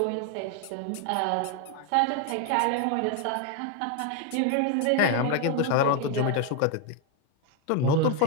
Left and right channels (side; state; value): both; different; correlation 0.01